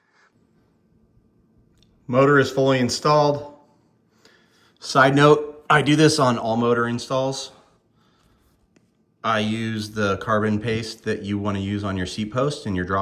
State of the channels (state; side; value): identical; both; correlation 1.00